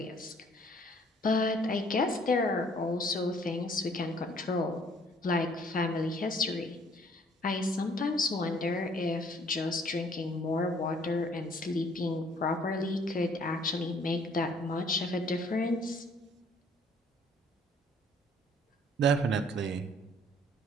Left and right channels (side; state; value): both; normal; correlation 0.59